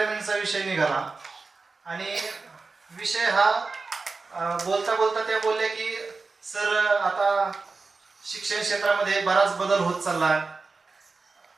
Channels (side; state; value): left; quieter; 4.1 dB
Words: विषय निघाला आणि विषय हा बोलता बोलता त्या बोलल्या की सर आता शिक्षण क्षेत्रामध्ये बराच बदल होत चालला,